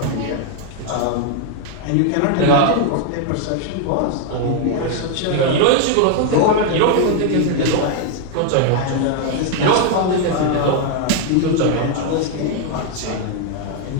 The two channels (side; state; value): both; different; correlation 0.00